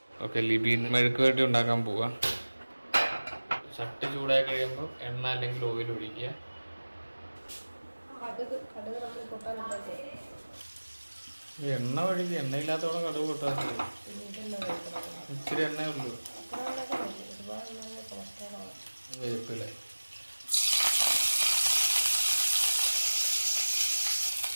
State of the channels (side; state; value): both; inverted; correlation -1.00